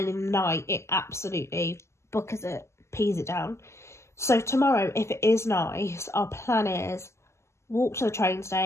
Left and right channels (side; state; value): right; late; 0.13 ms